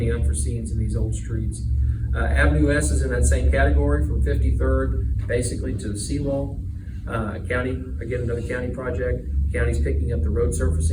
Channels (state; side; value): identical; both; correlation 1.00